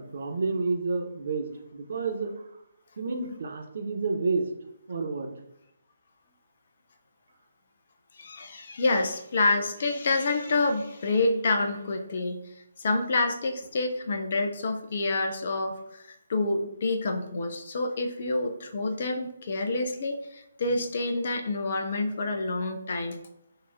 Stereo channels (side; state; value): both; inverted; correlation -0.79